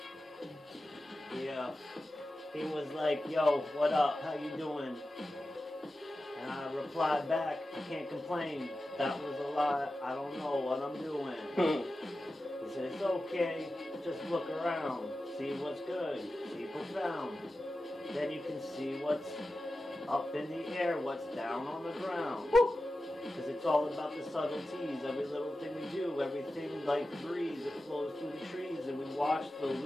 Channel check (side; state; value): both; normal; correlation 0.93